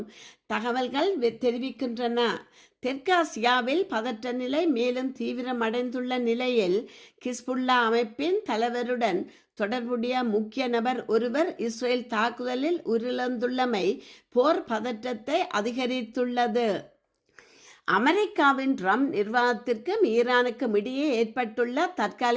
தகவல்கள் தெரிவிக்கின்றன. தெற்காசியாவில் பதற்ற நிலை மேலும் தீவிரமடைந்துள்ள நிலையில் ஹிஸ்புல்லா அமைப்பின் தலைவருடன் தொடர்புடைய முக்கிய நபர் ஒருவர் இஸ்ரேல் தாக்குதலில் உயிரிழந்துள்ளமை போர் பதற்றத்தை அதிகரித்துள்ளது. அமெரிக்காவின் ட்ரம்ப் நிர்வாகத்திற்கும் ஈரானுக்கும் இடையே ஏற்பட்டுள்ள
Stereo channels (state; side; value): identical; both; correlation 1.00